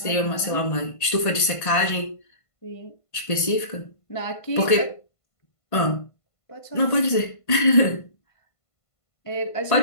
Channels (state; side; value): late; right; 1.5 ms